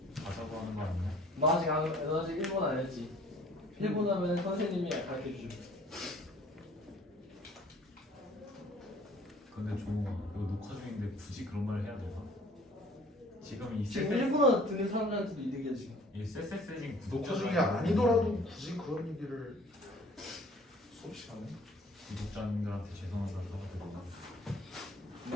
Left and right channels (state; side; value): normal; both; correlation 0.54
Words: 가자고 하는 거 아니야? 너 아직 일본 안 했지? 일본 하면 선생님이 가르쳐 주죠. 근데 종호가 이거 녹화 중인데 굳이 그런 말을 해야 되나? 지금 이 지금 쎄쎄 일본어 듣는 사람들한테도 이득이야 지금. 이 쎄쎄쎄진 녹화 중이 아니더라도 굳이 그런 얘기를 수업 시간에? 구독자님들한테 죄송하다고 하고